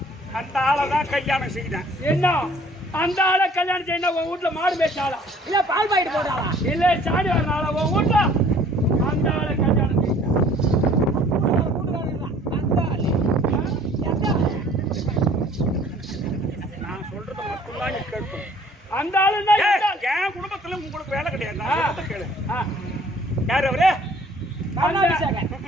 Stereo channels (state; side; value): normal; both; correlation 0.55